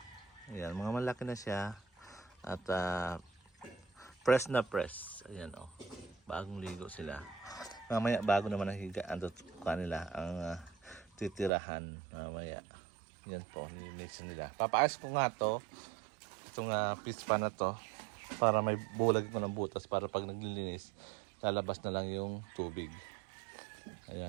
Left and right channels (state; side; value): drops out; left; at 11.5 s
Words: Ayan, mga malaki na siya. At press na press. Ayan o. Bagong ligo sila. Mamaya bago naman ang higaan kanila ang titirahan. Mamaya. Yan po. Nilinisan nila. Papaayos ko nga to. Itong fish pan na to. Para may bulag ko ng butas. Para pag naglilinis, lalabas na lang yung tubig.